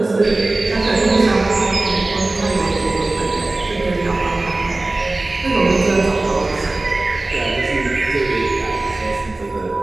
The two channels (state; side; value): quieter; left; 3.0 dB